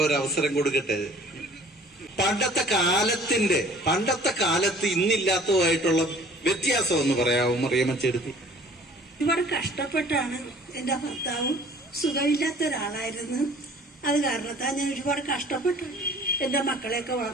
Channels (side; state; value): both; normal; correlation 0.51